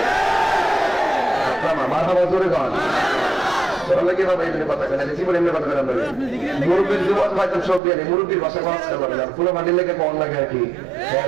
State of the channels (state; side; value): drops out; left; at 7.8 s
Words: মারহাবা জোরে গান মুরব্বীর যুবক হয়তো সব দিয়ে মুরব্বীর ভাষা কথা বলে ফুলো মাটির লেগে কম লাগে আর কি